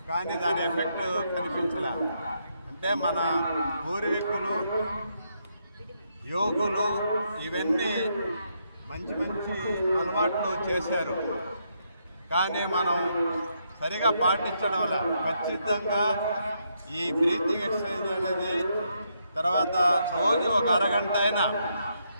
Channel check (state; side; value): inverted; both; correlation -0.78